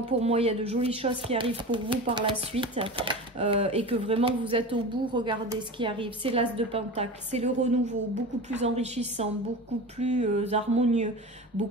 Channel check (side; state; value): both; normal; correlation 0.30